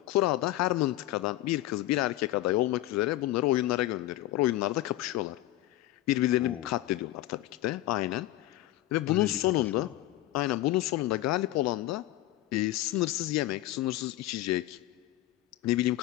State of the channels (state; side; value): quieter; right; 15.9 dB